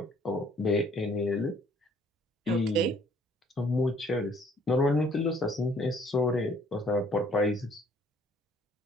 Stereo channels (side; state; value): both; normal; correlation 0.60